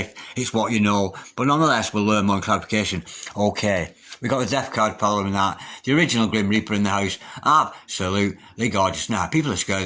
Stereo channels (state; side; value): identical; both; correlation 1.00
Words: it's what you know. But nonetheless, we'll learn more clarification. Okay. We got the Death card following that. The original Grim Reaper in the house. Absolutely gorgeous. Now, people are scared